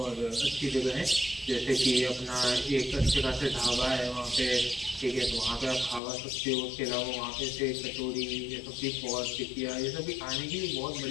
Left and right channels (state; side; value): drops out; right; at 6.0 s